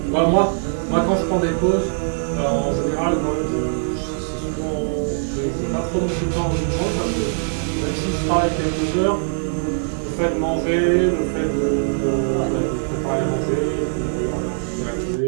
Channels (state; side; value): silent; left; digital silence